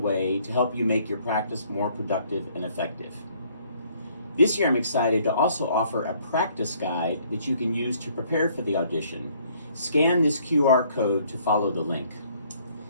to help you make your practice more productive and effective. This year I'm excited to also offer a practice guide that you can use to prepare for the audition. Scan this QR code to follow the link.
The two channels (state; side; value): inverted; both; correlation -0.62